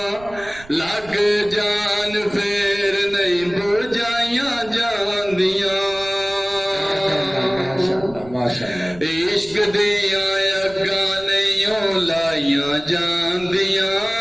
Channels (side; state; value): right; noise; rumble, 20 dB below the sound